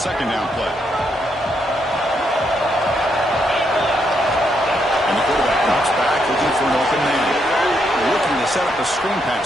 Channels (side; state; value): both; normal; correlation 0.77